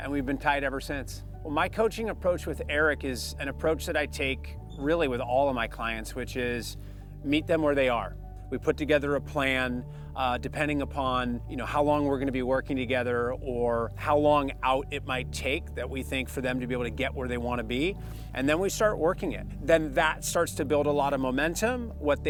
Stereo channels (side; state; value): both; identical; correlation 1.00